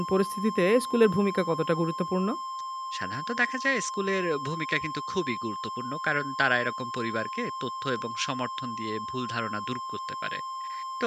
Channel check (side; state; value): both; identical; correlation 1.00